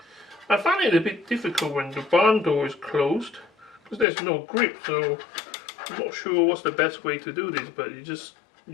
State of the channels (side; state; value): right; drops out; at 4.0 s